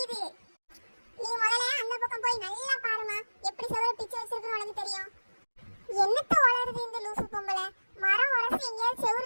நீ முதல்ல அந்த பக்கம் போய் நல்லா பாருமா, எப்படி செவுர பிச்சு வச்சிருக்குன்னு உனக்கு தெரியும். என்னத்த வளருது இந்த லூசு பொம்பளை, மரம் உரசி எங்கேயாவது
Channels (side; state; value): both; inverted; correlation -1.00